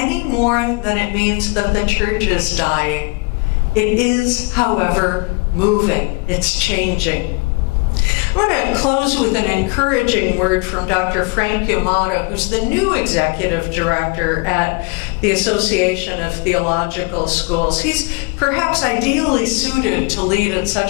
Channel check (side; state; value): right; quieter; 28.7 dB